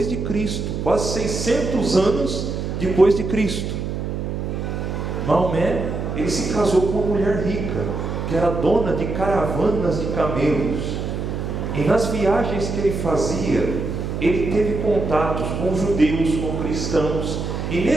de Cristo, quase 600 anos depois de Cristo. Maomé, ele se casou com uma mulher rica, que era dona de caravanas de camelos. E nas viagens que ele fazia, ele teve contatos com judeus, com cristãos. E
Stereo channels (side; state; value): right; noise; hum, 4 dB below the sound